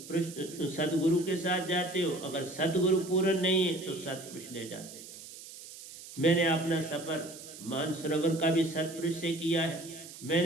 सतगुरु के साथ जाते हो, अगर सतगुरु पूर्ण नहीं है तो सतपुरुष ले जाते हो। मैंने अपना सफर मानसरोवर का भी सतपुरुष से किया है।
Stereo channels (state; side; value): noise; right; hiss, 15 dB below the sound